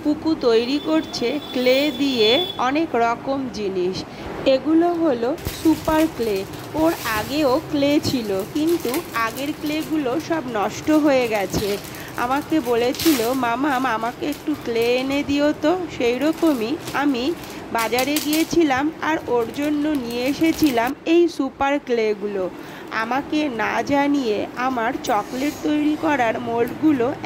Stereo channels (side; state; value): both; identical; correlation 1.00